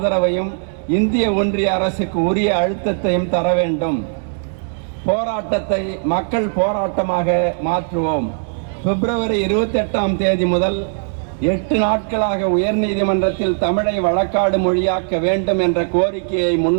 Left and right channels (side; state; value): left; silent; digital silence